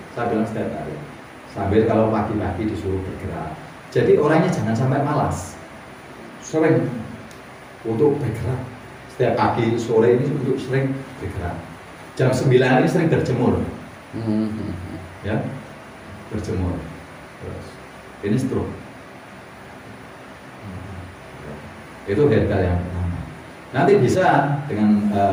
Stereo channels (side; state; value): both; identical; correlation 1.00